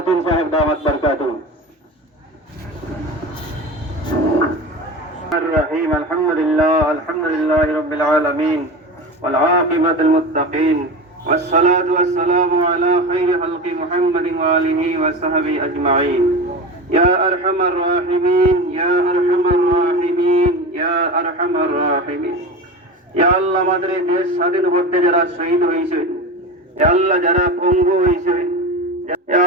সাহেব দাওয়াত বরকাতুহু। الرحيم الحمد لله رب العالمين والعاقبة للمتقين والصلاة والسلام على خير خلق محمد وآله وصحبه أجمعين يا أرحم الراحمين يا أرحم الراحمين يا أرحم الراحمين يا الله আমাদের এই দেশ স্বাধীন করতে যারা শহীদ হয়েছে, ইয়া আল্লাহ যারা পঙ্গু হয়েছে, ইয়া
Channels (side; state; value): both; normal; correlation 0.27